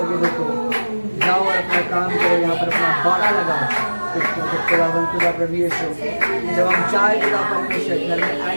जाओ और अपना काम करो यहाँ पर अपना बाड़ा लगाओ खुदावन खुदा प्रभु यीशु जब हम चाहे पिता परमेश्वर घर में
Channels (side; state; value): both; inverted; correlation -1.00